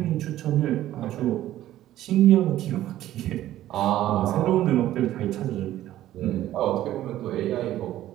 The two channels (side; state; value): left; quieter; 13.6 dB